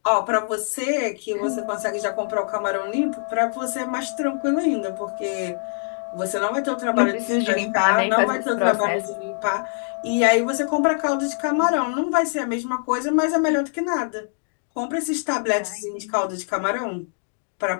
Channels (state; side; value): silent; right; digital silence